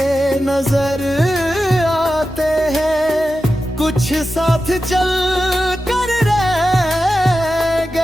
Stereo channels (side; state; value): both; normal; correlation 0.92